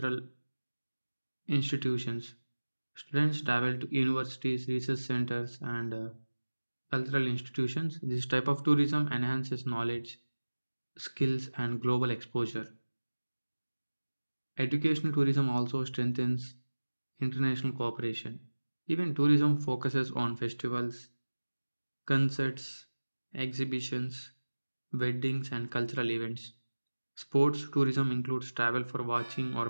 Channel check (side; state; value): both; inverted; correlation -1.00